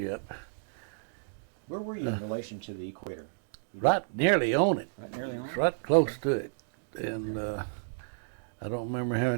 up. Where were you in relation to the equator? Right nearly on it. Right nearly on it? Right close to it. And I don't remember how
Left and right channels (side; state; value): left; silent; digital silence